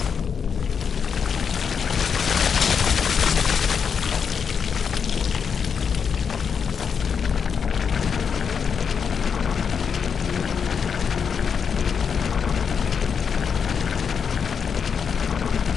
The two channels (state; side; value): quieter; right; 6.6 dB